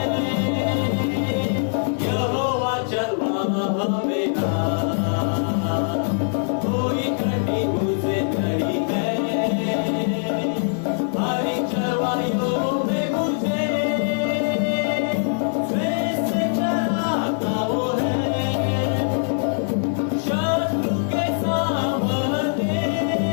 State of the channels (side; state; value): right; silent; digital silence